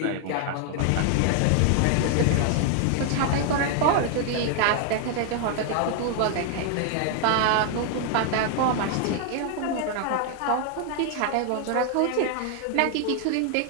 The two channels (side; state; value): both; different; correlation 0.00